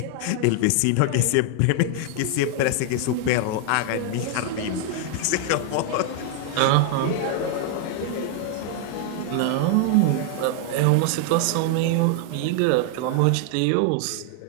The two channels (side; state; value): both; different; correlation 0.00